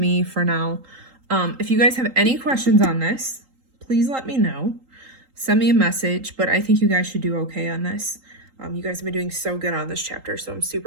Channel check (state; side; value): late; left; 3.8 ms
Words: for now. If you guys have any questions on this, please let me know. Send me a message, but I think you guys should do okay on this. You guys have been doing so good on this chapter, so I'm